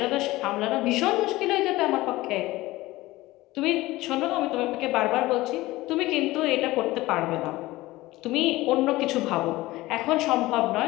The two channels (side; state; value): right; quieter; 18.6 dB